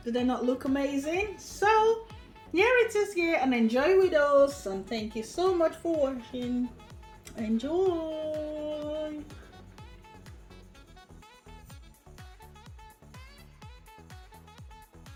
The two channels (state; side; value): identical; both; correlation 1.00